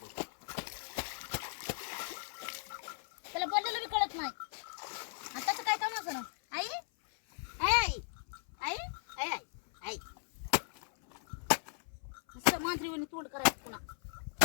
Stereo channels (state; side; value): silent; right; 53 dB below the other